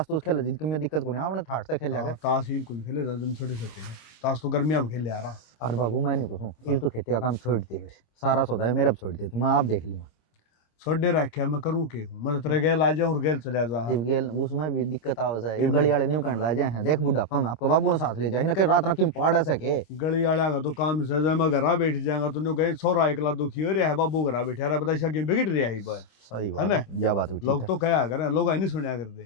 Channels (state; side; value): late; right; 26 ms